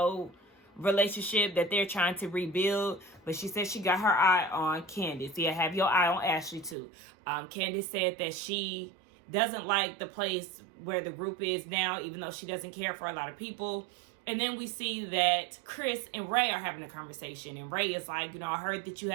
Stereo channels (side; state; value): left; drops out; at 6.8 s